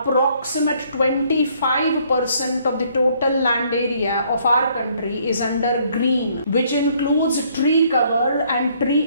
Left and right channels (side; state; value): both; inverted; correlation -0.65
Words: 25% of the total land area of our country is under green, which includes tree cover and